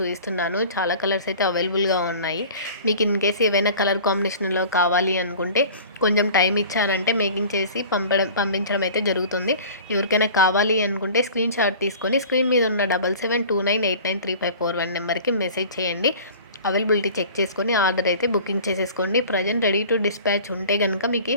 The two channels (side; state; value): both; inverted; correlation -0.42